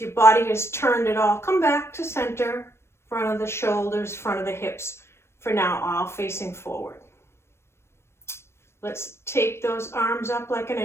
your body has turned at all, come back to center, front of the shoulders, front of the hips, for now, all facing forward. Let's take those arms up like an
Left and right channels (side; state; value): right; late; 0.12 ms